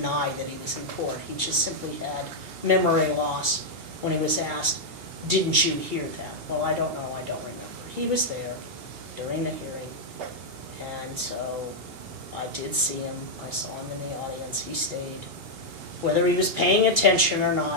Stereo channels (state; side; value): late; left; 2.8 ms